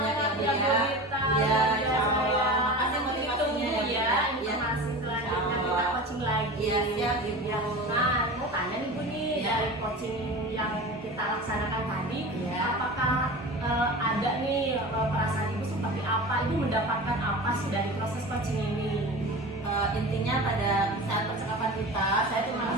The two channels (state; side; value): normal; both; correlation 0.33